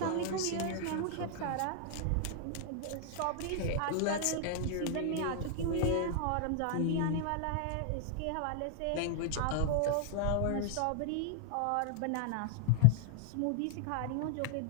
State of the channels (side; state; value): both; different; correlation -0.01